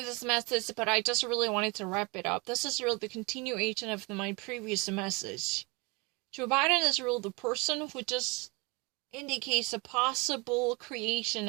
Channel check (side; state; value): left; quieter; 27.3 dB